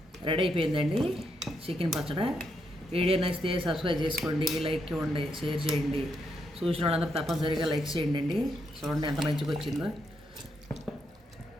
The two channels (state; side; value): normal; both; correlation 0.79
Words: రెడీ అయిపోయిందండి చికెన్ పచ్చడి. వీడియో నచ్చితే సబ్స్క్రైబ్ చేసుకోండి, లైక్ ఇవ్వండి, షేర్ చేయండి. చూసిన వాళ్ళందరూ తప్పనిసరిగా లైక్ చేయండి అండి. చూడండి ఎంత మంచిగా వచ్చిందో.